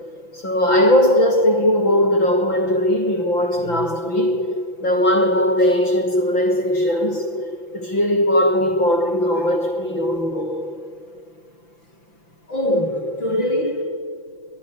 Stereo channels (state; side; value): late; right; 5.9 ms